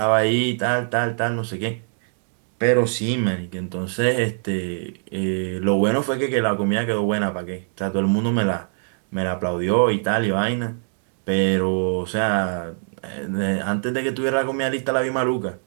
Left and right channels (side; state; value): left; silent; digital silence